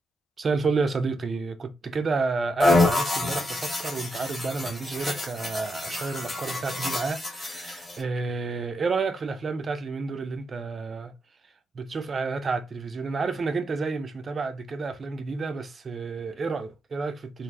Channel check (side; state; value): both; normal; correlation 0.84